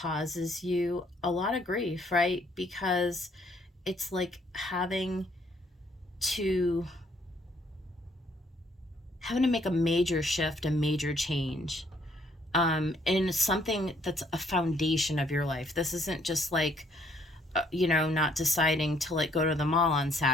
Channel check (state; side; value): normal; both; correlation 0.67